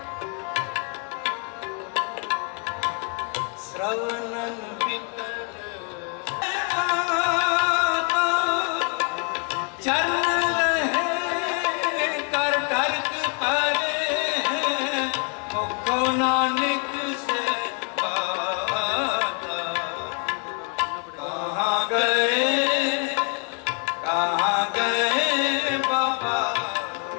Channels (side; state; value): right; quieter; 35.3 dB